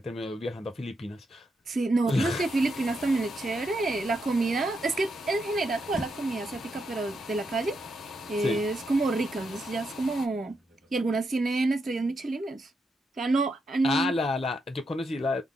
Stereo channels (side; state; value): both; normal; correlation 0.82